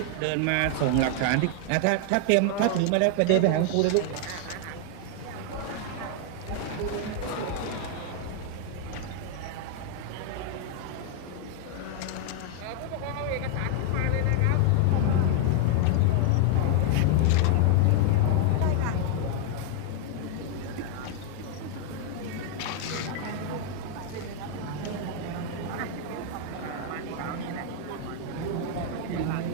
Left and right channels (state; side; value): different; both; correlation 0.00